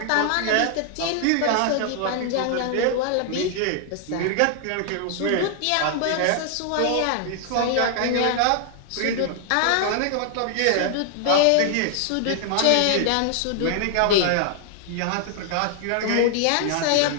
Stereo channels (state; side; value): different; both; correlation 0.00